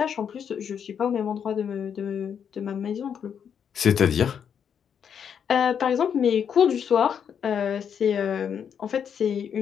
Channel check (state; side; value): quieter; right; 7.8 dB